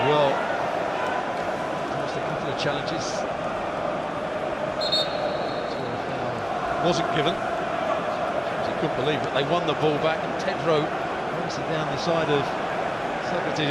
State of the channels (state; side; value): identical; both; correlation 1.00